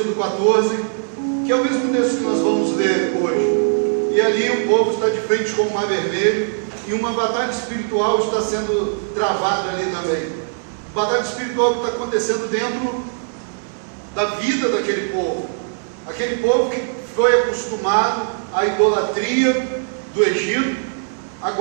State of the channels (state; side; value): silent; left; digital silence